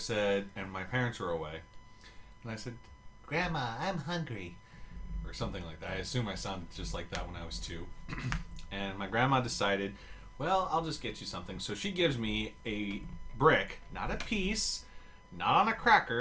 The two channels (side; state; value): both; identical; correlation 1.00